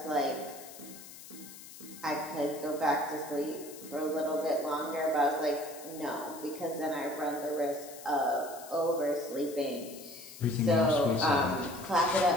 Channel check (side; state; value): left; noise; hiss, 16 dB below the sound